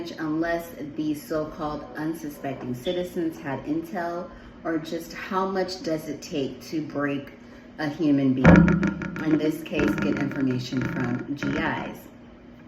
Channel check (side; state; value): both; identical; correlation 1.00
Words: unless these so-called unsuspecting citizens had intel, or just how much does it take to break a human being. In this case, get information from GIs.